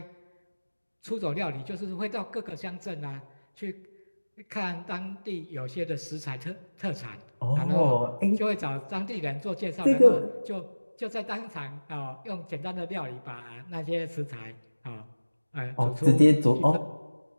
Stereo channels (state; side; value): inverted; both; correlation -1.00